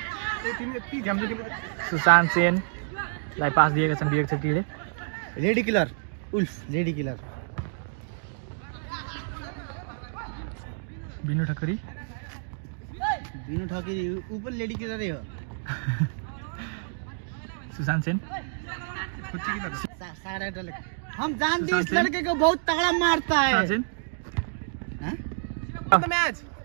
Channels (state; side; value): silent; left; digital silence